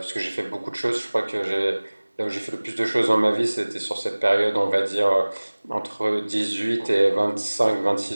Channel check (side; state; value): both; inverted; correlation -1.00